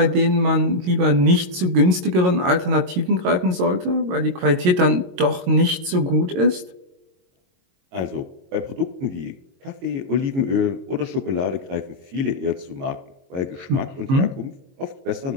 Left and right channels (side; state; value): left; late; 22 ms